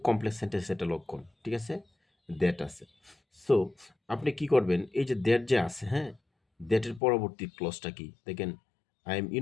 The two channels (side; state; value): right; drops out; at 7.0 s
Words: কমপ্লেক্স সেন্টেন্স একটা লক্ষণ, ঠিক আছে, দ্যাট আছে, সো আপনি কি করবেন, এই যে দ্যাট যে আছে, হ্যাঁ, দ্যাটের পরবর্তী ক্লজটা কি দেখেন, আই এম